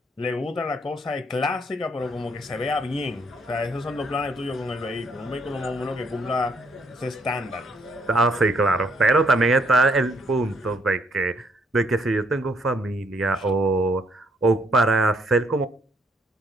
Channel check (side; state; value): both; normal; correlation 0.69